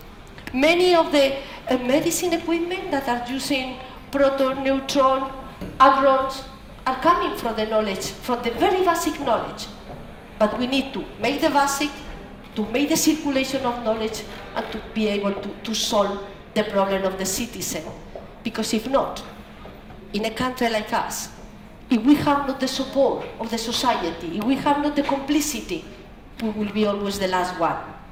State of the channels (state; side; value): identical; both; correlation 1.00